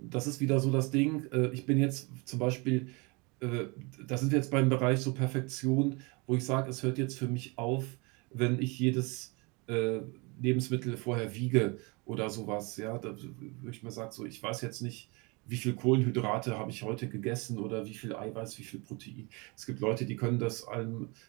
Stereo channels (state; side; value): quieter; left; 28.7 dB